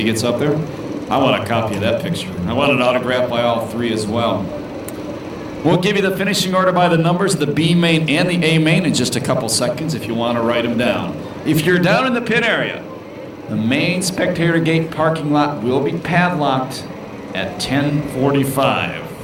gets up there. I want a copy of that picture. I want it autographed by all 3 as well. We'll give you the finishing order by the numbers of the B main and the A main in just a couple seconds if you want to write them down. If you're down in the pit area, the main spectator gate parking lot will be padlocked at 10:45.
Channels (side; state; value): both; identical; correlation 1.00